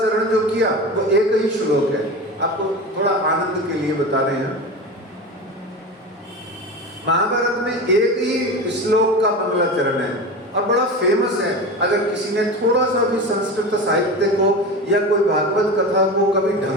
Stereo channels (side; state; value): both; normal; correlation 0.27